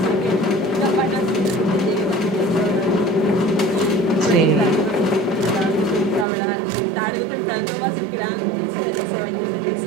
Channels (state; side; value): drops out; left; at 6.2 s